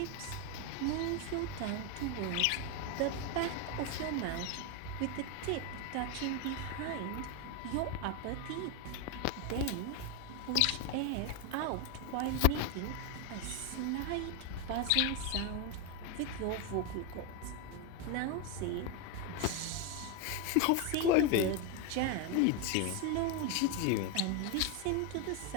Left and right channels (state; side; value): different; both; correlation 0.02